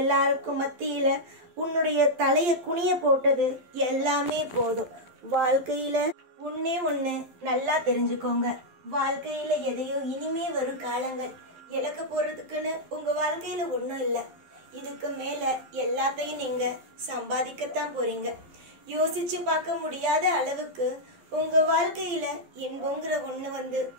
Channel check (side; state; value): left; late; 11 ms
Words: மத்தியில உன்னுடைய தலைய குனிய போட்டது எல்லாமே போதும். வாழ்க்கையில ஒண்ணு நல்லா தெரிஞ்சுக்கோங்க. வாழ்க்கையில எதையோ இனிமே வரும் காலங்கள் இழக்க போறதுக்குன்னு உங்க வாழ்க்கையில ஒண்ணும் இல்லை. இதுக்கு மேல எல்லாத்தையும் நீங்க சம்பாதிக்கத்தான் போறீங்க. யோசிச்சு பார்க்க முடியாத அளவுக்கு உங்க வாழ்க்கையில இன்பங்கிற ஒண்ணு வந்து